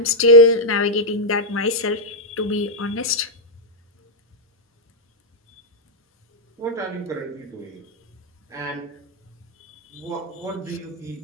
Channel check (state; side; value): normal; both; correlation -0.04